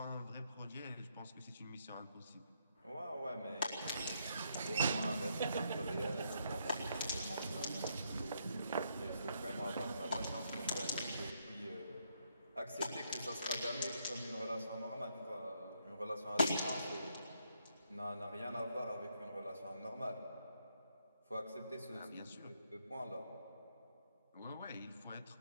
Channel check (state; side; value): inverted; both; correlation -0.76